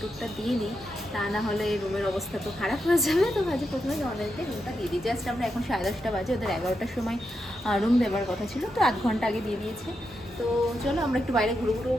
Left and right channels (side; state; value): both; normal; correlation 0.85